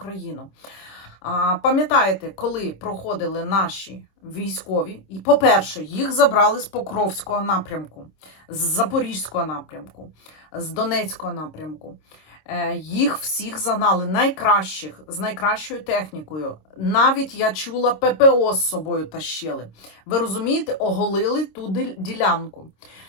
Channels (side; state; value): right; late; 26 ms